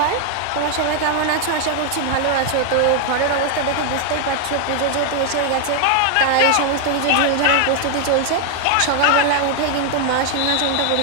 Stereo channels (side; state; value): both; different; correlation 0.00